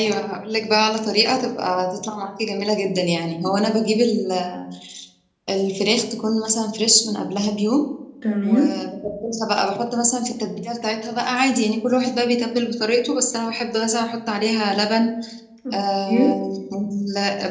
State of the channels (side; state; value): both; identical; correlation 1.00